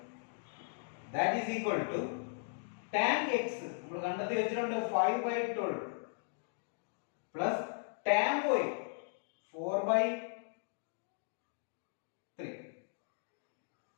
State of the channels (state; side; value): silent; right; digital silence